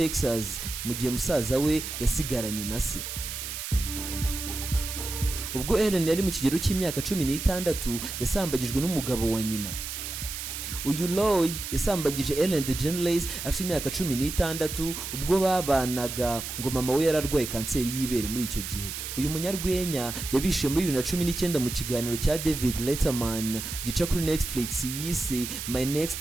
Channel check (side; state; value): right; noise; hiss, 6 dB below the sound